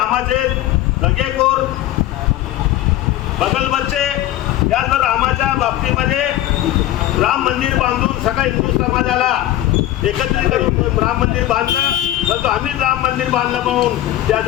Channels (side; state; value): right; quieter; 14.1 dB